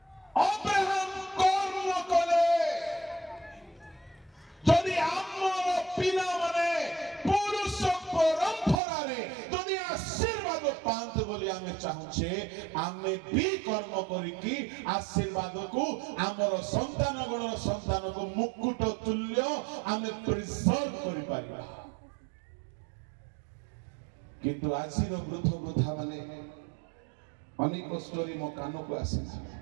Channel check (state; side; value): drops out; left; at 8.8 s